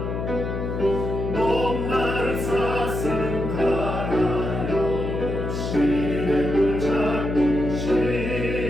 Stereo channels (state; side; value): noise; left; hum, 3 dB below the sound